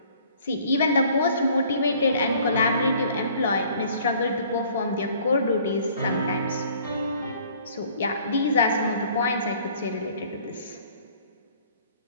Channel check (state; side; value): inverted; both; correlation -0.55